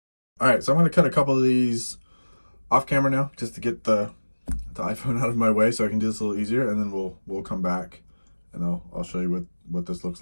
All right, so I'm going to cut a couple of these off camera now, just to get the iPhone out of my way, so I can do this a little easier, and then we'll come back, and I'll show you what this looks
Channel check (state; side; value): inverted; both; correlation -1.00